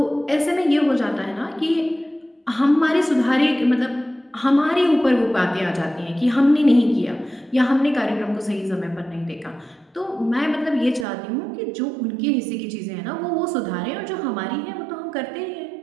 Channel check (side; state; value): left; drops out; at 11.1 s